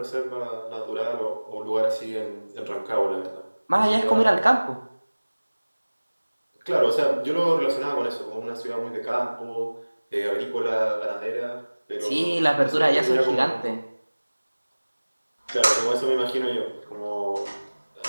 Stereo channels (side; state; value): both; inverted; correlation -1.00